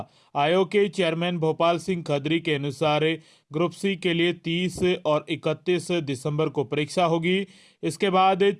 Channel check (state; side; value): identical; both; correlation 1.00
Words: आयोग के चेयरमैन भोपाल सिंह खदरी के अनुसार ग्रुप सी के लिए 30 और 31 दिसंबर को परीक्षा होगी। इसके बाद